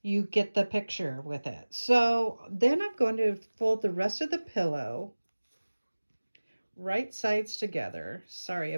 you get the picture with it. So then I'm going to fold the rest of the pillow right sides together. Sorry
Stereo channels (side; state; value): both; inverted; correlation -1.00